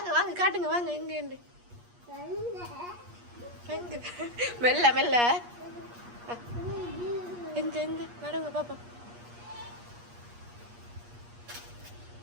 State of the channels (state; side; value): late; left; 8.4 ms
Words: வாங்க காட்டுங்க வாங்க எங்க எங்க மெல்ல மெல்ல எங்க எங்க நடுங்க பாப்பா.